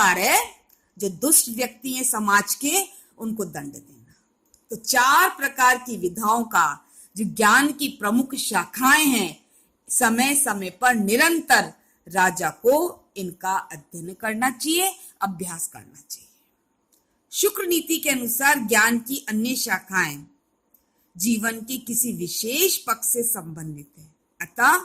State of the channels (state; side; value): identical; both; correlation 1.00